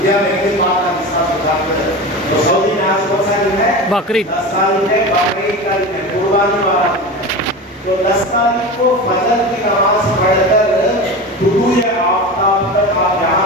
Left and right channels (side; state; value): both; normal; correlation 0.27